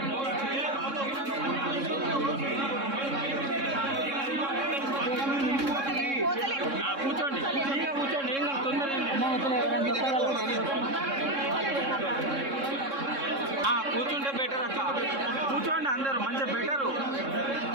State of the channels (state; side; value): late; left; 3.6 ms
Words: కూర్చోండి కూర్చోండి ఏం కాదు కూర్చుంటే బెటర్ అక్క కూర్చోండి అందరూ మంచిగా బెటరు